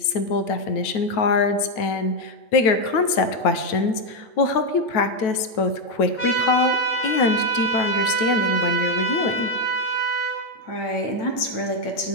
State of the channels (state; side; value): late; right; 9.1 ms